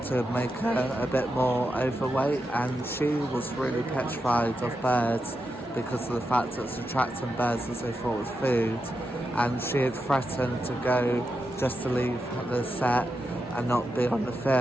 to make her a bit more overweight, and she was really petrified of birds because of the fact that it's attracting birds as they thought it was food, and she had threatened to go just to leave the set and not be on the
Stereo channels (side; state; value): both; normal; correlation 0.87